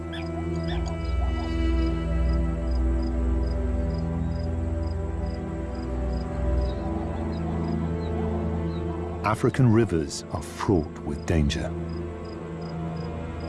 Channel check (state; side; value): identical; both; correlation 1.00